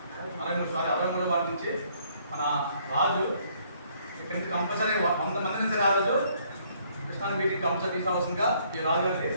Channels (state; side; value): inverted; both; correlation -0.65